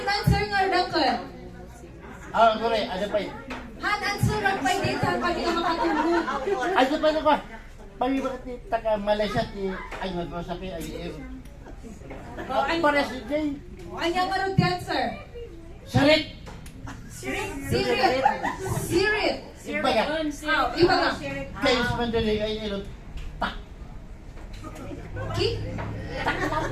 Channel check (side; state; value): both; identical; correlation 1.00